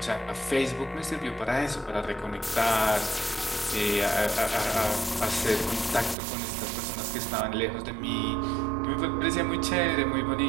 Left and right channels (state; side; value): drops out; left; at 6.2 s